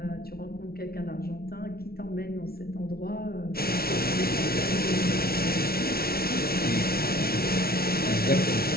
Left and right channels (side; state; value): right; late; 0.44 ms